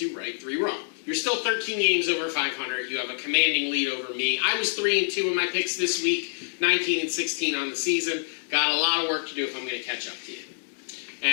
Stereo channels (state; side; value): silent; right; digital silence